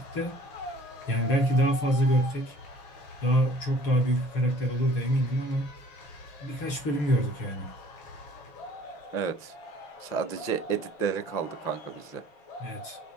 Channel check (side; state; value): right; late; 6.7 ms